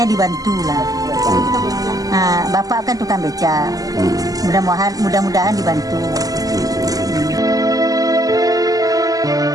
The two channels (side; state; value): left; late; 0.17 ms